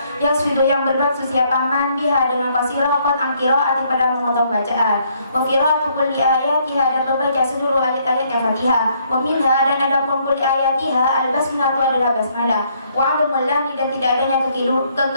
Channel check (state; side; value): inverted; both; correlation -0.68